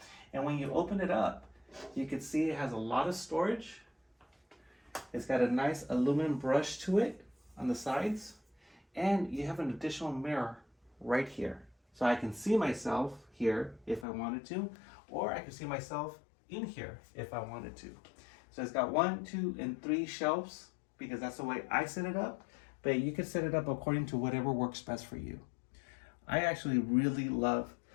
And when you open it up, you can see it has a lot of storage. It's got a nice aluminum brush to it on the sides, and you have an additional mirror right here. So I can see myself here if I wanted to, or I can see myself in here if I wanted to. So it's got 1, 2, and 3 shelves because that's the way I set it up, but you can set it up according to whatever works best for you. I actually really love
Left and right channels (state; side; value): drops out; right; at 14.1 s